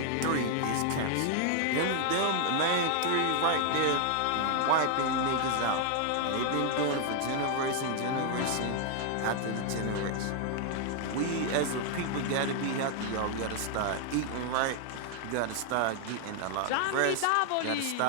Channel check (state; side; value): different; both; correlation 0.00